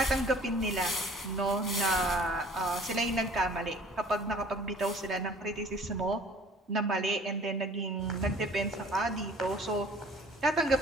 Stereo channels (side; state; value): both; normal; correlation 0.50